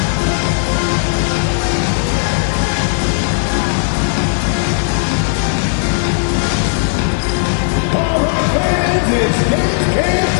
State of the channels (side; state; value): right; silent; 63 dB below the other